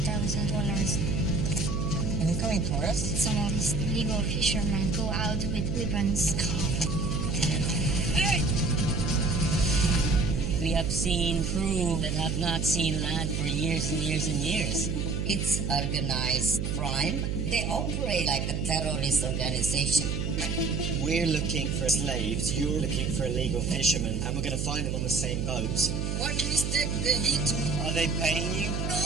Incoming tourists? Some of these illegal fishermen go out with weapons. We have seen crew that have not seen land for years and years and years. It's organized crime. They operate like a terrorist organization. We're looking for slaves, you're looking for illegal fishermen, and we're going to find them on the same boat. One mistake, they hit me. Are they paying you? No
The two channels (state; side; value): noise; right; hum, 1 dB below the sound